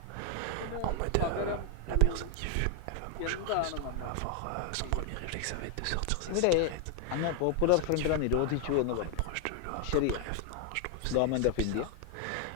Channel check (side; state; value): both; different; correlation 0.00